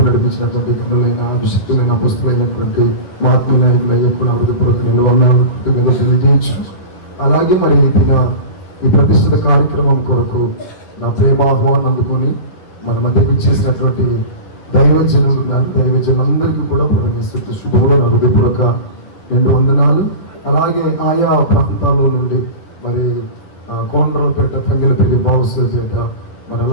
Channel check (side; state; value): right; late; 10 ms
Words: నడిపించినటువంటి గనులైన, అభిషక్తులైన, పుస్తులైనటువంటి మహాత్మ నాయకులయ్యే కూడా హృదయపూర్వక నిలవనాలు తెలియజేయచ్చు. అలాగే మరి ఈ ప్రతిష్ఠిత కార్యక్రమం కొరకు నా ప్రేమ ఆహ్వానం అందుకొని మన మధ్యకు ఇచ్చేసినటువంటి దైవజనులందరికీ కూడా ప్రవేశిస్తూ శుభంలో నా హృదయపూర్వక 2 వందనాలు. అలాగే ఆయా ప్రాంతాల్లో నుండి మరి కోనరావుపేట, తంగెలపల్లి, బావుసపేట, మరి